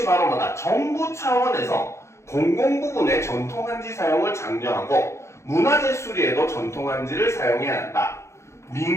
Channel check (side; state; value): right; late; 0.14 ms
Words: 바로 뭐다? 정부 차원에서 공공부문의 전통 한지 사용을 장려하고 문화재 수리에도 전통 한지를 사용해야 한다.